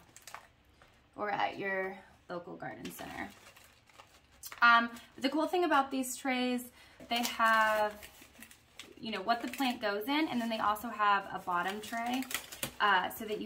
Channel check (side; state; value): both; identical; correlation 1.00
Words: or at your local garden center. The cool thing about these trays, they have, you know, what the plant goes in, and then they also have a bottom tray so that you